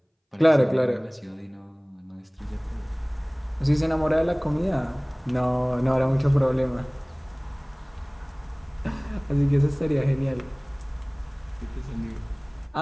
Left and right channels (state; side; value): identical; both; correlation 1.00